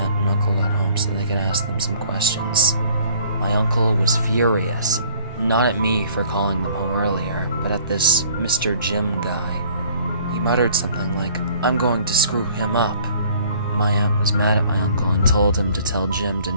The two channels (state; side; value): inverted; both; correlation -0.56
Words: and uncle got home so they could ask them some questions. My uncle was furious, not at me for calling them home earlier, but at this Mr. Jim guy. He muttered something like, "I'm going to screw him up." My aunt was mad at my uncle and told him to tell Jim to